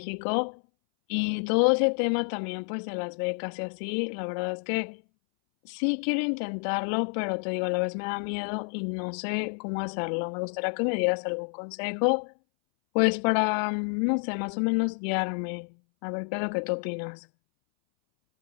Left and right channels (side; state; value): right; silent; 59 dB below the other